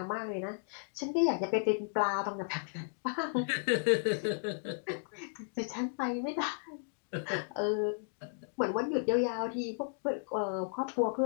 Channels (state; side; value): silent; right; digital silence